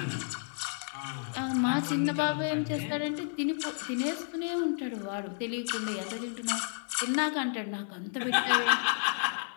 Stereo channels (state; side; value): silent; right; digital silence